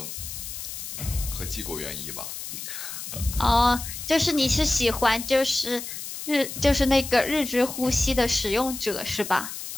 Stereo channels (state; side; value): noise; left; hiss, 8 dB below the sound